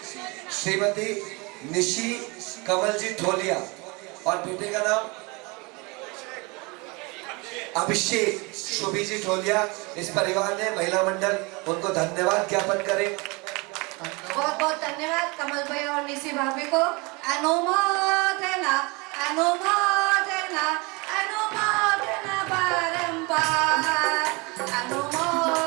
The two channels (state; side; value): quieter; left; 27.5 dB